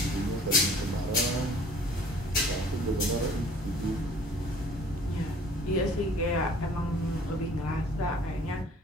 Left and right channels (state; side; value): normal; both; correlation 0.53